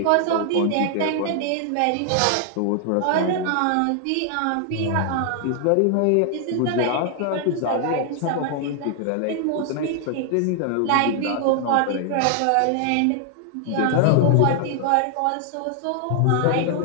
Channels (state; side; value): different; both; correlation 0.00